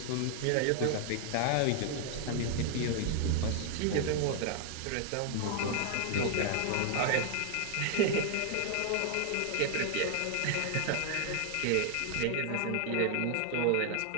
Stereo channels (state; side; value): different; both; correlation 0.00